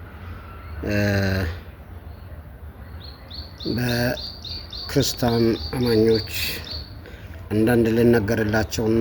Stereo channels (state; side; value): identical; both; correlation 1.00